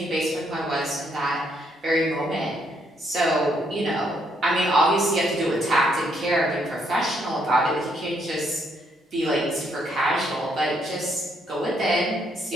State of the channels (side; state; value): both; normal; correlation 0.72